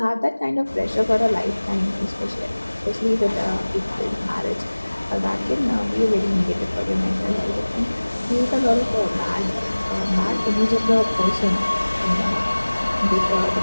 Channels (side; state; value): both; inverted; correlation -1.00